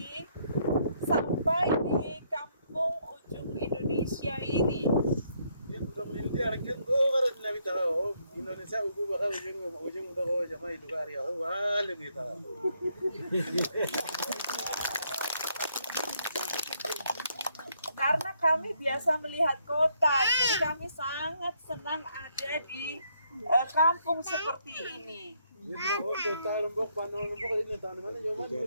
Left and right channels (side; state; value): both; inverted; correlation -0.72